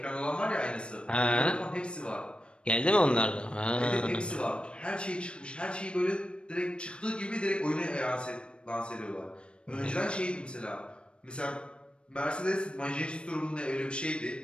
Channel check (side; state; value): right; late; 0.056 ms